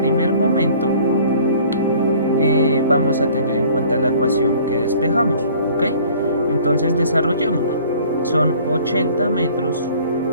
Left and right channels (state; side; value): inverted; both; correlation -0.52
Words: momento, vamos a tener en cuenta la ecuación que despejamos, ¿ok? Entonces desarrollémosla. Son 80 metros